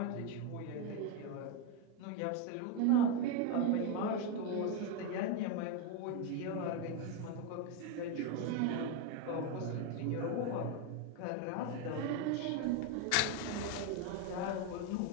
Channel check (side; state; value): both; different; correlation 0.02